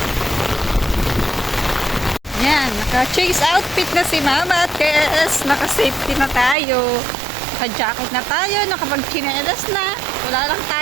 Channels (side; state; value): left; drops out; at 6.6 s